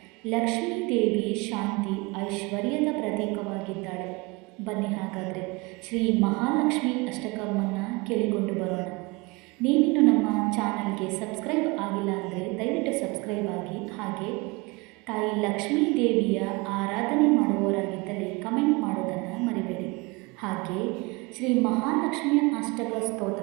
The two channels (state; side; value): quieter; left; 25.7 dB